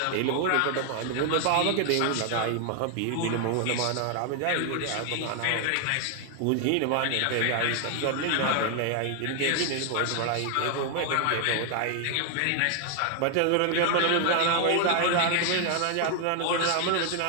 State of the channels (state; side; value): different; both; correlation 0.00